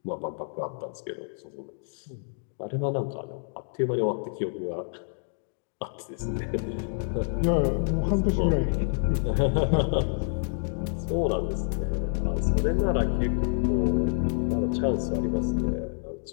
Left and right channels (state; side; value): silent; right; digital silence